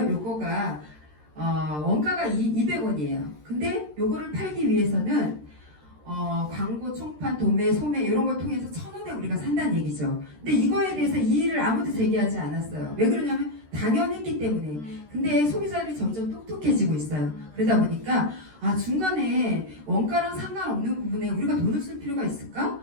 요거가 원가가 200원이에요. 근데 요거를 팔기 위해서는 광고, 총판, 도매, 소매 이런 걸 통해서 1,000원에 우리가 산다는 얘기죠. 근데 이거에 대해서 이의를 아무도 제기하지 않았어요. 왜 그러냐면 당연했기 때문에. 근데 소비자들이 점점 똑똑해지고 있어요. 그러다 보니까 중간에 원가랑 상관없는 부분에 우리가 돈을 쓸 필요가 있을까?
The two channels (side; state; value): left; late; 13 ms